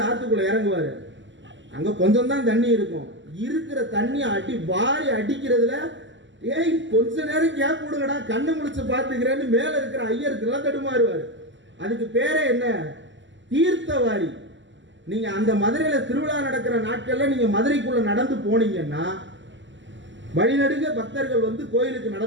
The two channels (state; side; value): late; left; 0.54 ms